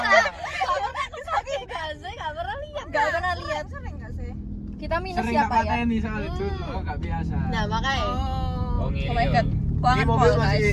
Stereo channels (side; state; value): both; identical; correlation 1.00